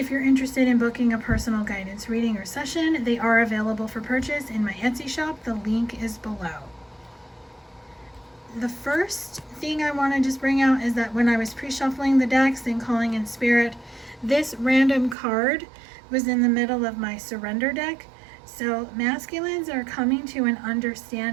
you're interested in booking a personal guidance reading or session, they are available for purchase in my Etsy shop. The link is below. The first thing I want to just bring out is that when I was pre-shuffling the decks and calling in Spirit, this random card was in the middle of my surrender deck. So masculines are coming to an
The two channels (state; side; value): drops out; left; at 15.2 s